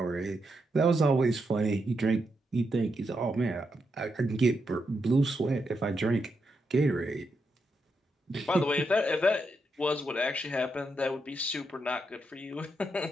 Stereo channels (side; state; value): both; normal; correlation 0.83